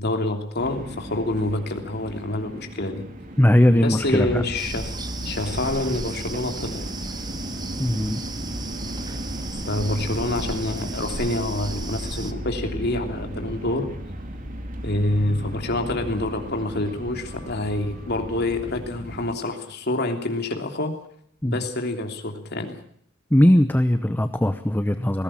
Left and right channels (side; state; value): both; normal; correlation 0.69